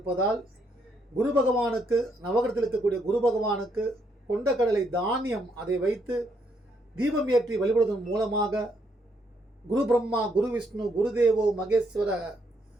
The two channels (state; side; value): normal; both; correlation 0.74